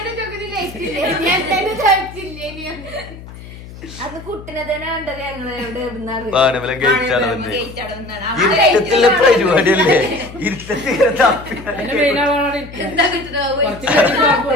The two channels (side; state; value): left; noise; hum, 15 dB below the sound